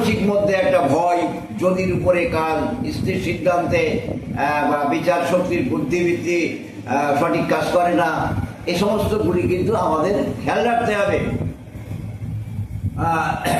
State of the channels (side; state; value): both; identical; correlation 1.00